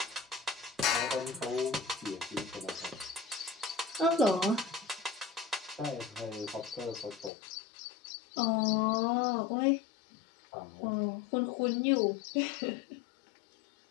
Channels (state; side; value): drops out; right; at 7.3 s